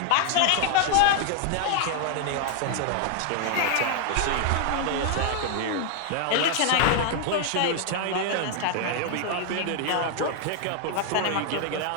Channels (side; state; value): both; different; correlation 0.00